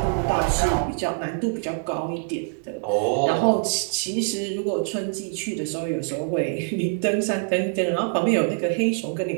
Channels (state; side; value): silent; left; digital silence